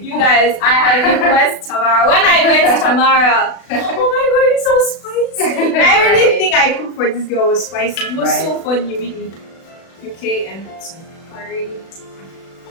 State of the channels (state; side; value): late; right; 36 ms